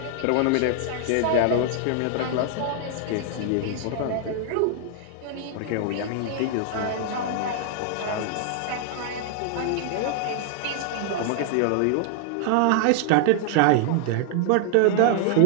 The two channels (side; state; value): both; different; correlation 0.00